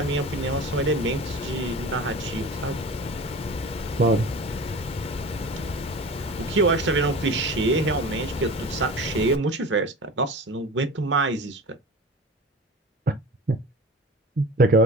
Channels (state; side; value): normal; both; correlation 0.35